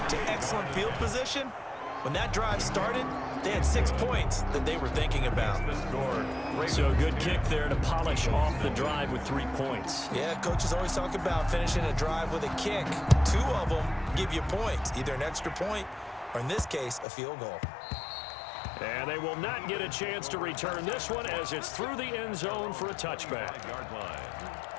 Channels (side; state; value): right; drops out; at 17.1 s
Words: to excellent field position. When that drive started, they had 6 points that they were thinking about. So a good kick there to polish off the drive with 3 points. Yeah, coaches always talk about finishing a drive with a kick. 2 of them give you points, either an extra point or in this case, a field goal. And they will not get a chance to return this one as it's through the end zone for a touchback.